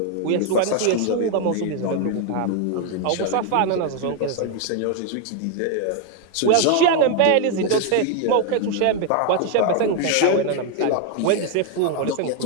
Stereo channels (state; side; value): different; both; correlation 0.00